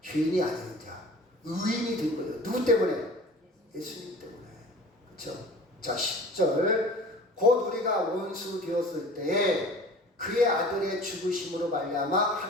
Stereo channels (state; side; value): normal; both; correlation 0.43